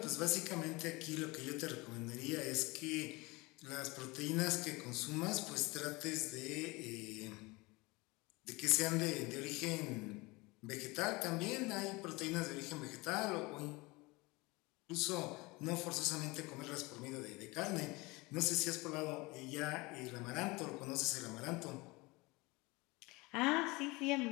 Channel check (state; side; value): quieter; right; 23.9 dB